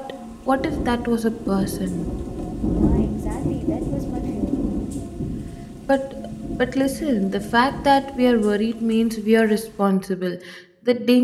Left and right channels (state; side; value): identical; both; correlation 1.00